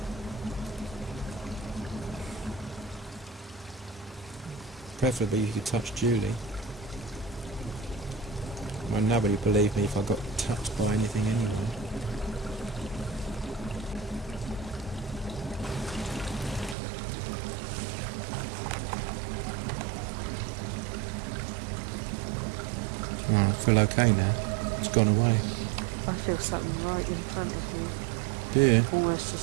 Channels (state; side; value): drops out; left; at 16.8 s